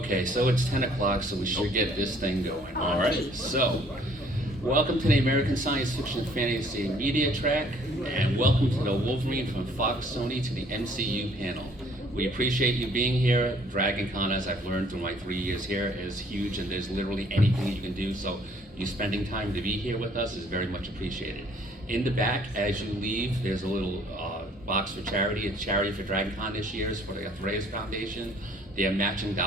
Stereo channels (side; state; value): both; normal; correlation 0.60